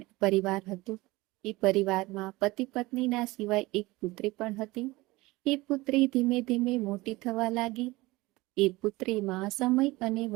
પરિવાર હતું. એ પરિવારમાં પતિ પત્નીના સિવાય એક પુત્રી પણ હતી. એ પુત્રી ધીમે ધીમે મોટી થવા લાગી. એ પુત્રીમાં સમય અને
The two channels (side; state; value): left; quieter; 20.8 dB